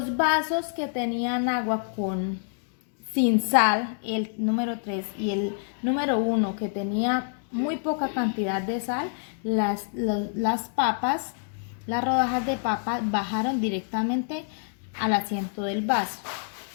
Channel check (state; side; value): silent; right; digital silence